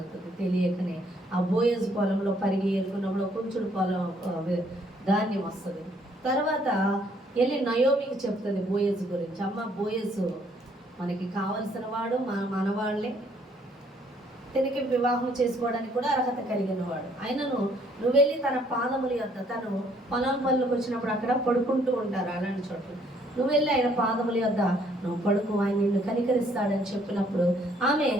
తెలియకనే. ఆ బోయజ్ పొలంలో పరిగె ఏరుకున్నప్పుడు కొంచెం పొలం ధాన్యం వస్తుంది. తర్వాత వెళ్ళి నయోమికి చెప్తుంది బోయజ్ గురించి, అమ్మ బోయజ్ మనకి కావలసిన వాడు మనవాళ్ళే. తనకి వివాహం చేసుకోవడానికి కూడా అర్హత కలిగిన వాడు. ఆయనను నువ్వు వెళ్ళి తన పాదముల యొద్ద, తను పొలం పనులకు వచ్చినప్పుడు అక్కడ పడుకుంటూ ఉంటారు అలాంటి చోట్ల, నువ్వు వెళ్ళి ఆయన పాదముల యొద్ద నువ్వు పడుకు, ఆయన నిన్ను కనికరిస్తాడని చెప్పినప్పుడు ఆమె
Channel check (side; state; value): both; normal; correlation 0.65